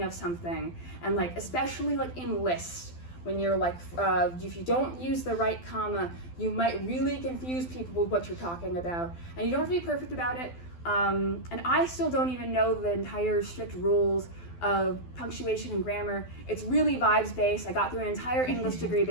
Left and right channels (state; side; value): late; right; 12 ms